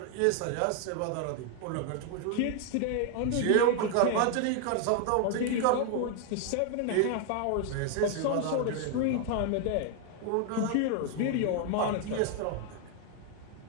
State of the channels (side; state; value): both; different; correlation 0.00